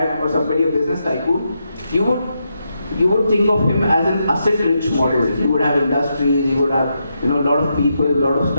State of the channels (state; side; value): inverted; both; correlation -0.83